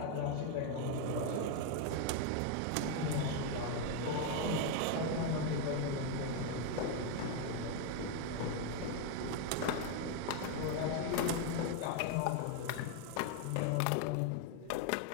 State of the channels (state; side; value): different; both; correlation 0.01